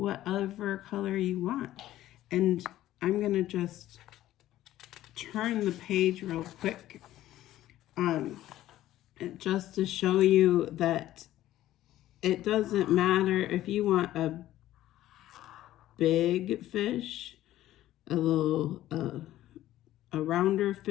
color you want. And I'm gonna just turn the page real quick just to show you that it doesn't matter if you want a big fish, a little a rounder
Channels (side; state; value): right; quieter; 14.1 dB